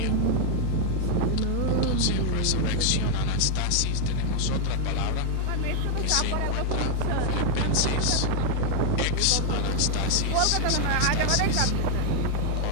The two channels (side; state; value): both; different; correlation 0.00